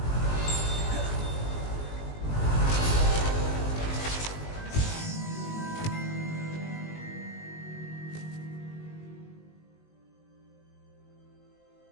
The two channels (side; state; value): right; late; 19 ms